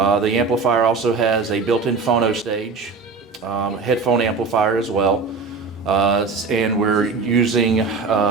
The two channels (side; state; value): left; quieter; 4.6 dB